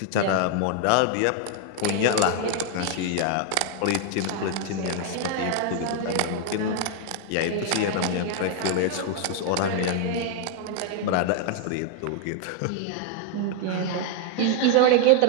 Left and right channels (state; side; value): different; both; correlation 0.00